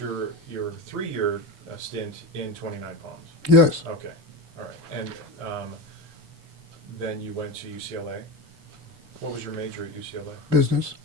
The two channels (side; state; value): left; late; 6.9 ms